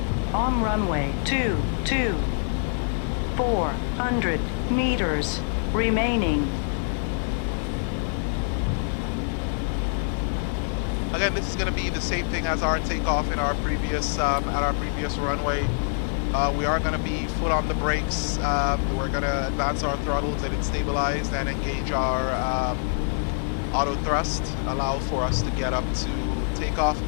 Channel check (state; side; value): silent; right; digital silence